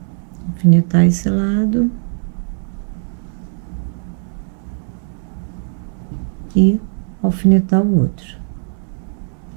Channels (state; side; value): silent; left; digital silence